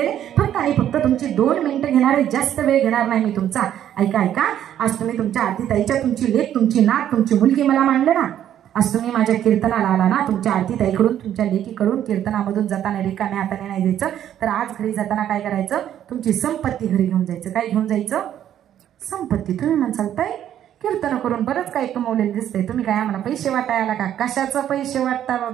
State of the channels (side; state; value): left; quieter; 10.8 dB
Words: फक्त आणि फक्त तुमची 2 मिनिटं घेणार आहे, जास्त वेळ घेणार नाही मी तुमचा. ऐका. आज तुम्ही तुमच्या आरतीताईच्या, तुमची लेक, तुमची नात, तुमची मुलगी मला मानलं ना. आज तुम्ही माझ्या कीर्तनाला आला ना, तुमच्या आरतीताईकडून, तुमच्या लेकीकडून कीर्तनामधून जाताना रिकाम्या हाताने नाही जायचं. तर आज घरी जाताना काय करायचं? तुमची संपत्ती घरी घेऊन जायचं. काय घेऊन जायचं? संपत्ती. तुम्ही म्हणसाल ताई कीर्तन करून बरंच काही कमवलेलं दिसतंय, तुम्ही काय आम्हाला पैसे वाटायला का? कशाचं पैसे वाटता